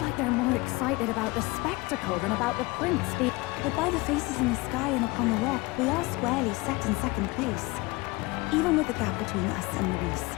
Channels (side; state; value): right; quieter; 23.2 dB